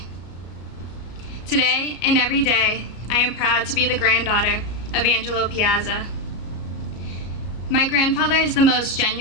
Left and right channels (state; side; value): late; right; 33 ms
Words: Today and every day, I am proud to be the granddaughter of Angelo Piazza. My grandfather is the most